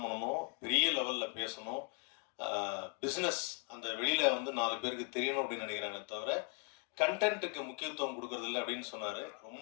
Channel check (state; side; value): quieter; right; 37.3 dB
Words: பண்ணணும், பெரிய லெவலில் பேசணும், பிஸ்னஸ் அந்த வெளியில் 4 பேருக்கு தெரியணும் அப்படின்னு நினைக்கிறாங்க. தவிர கண்டென்ட்டுக்கு முக்கியத்துவம் கொடுக்கறதில்ல அப்படின்னு சொன்னார்.